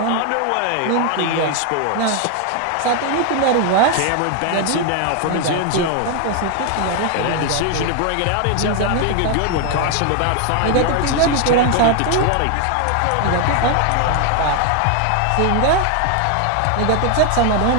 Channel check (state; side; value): different; both; correlation 0.01